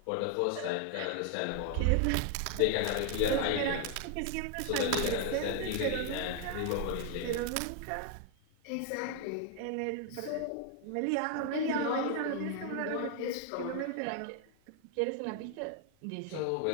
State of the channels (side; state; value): both; different; correlation 0.00